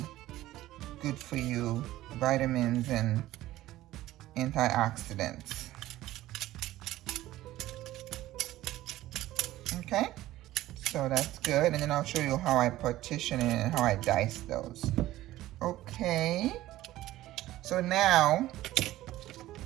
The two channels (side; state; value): left; quieter; 15.6 dB